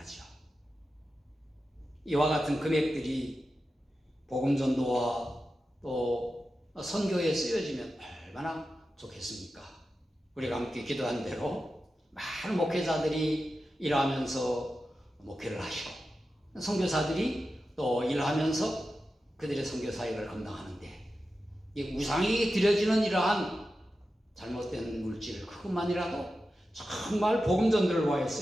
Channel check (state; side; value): normal; both; correlation 0.92